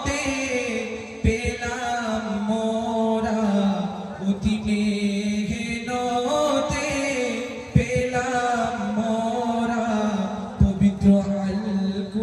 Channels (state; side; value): identical; both; correlation 1.00